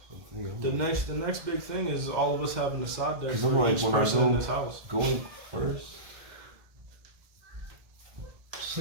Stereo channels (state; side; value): late; left; 2.1 ms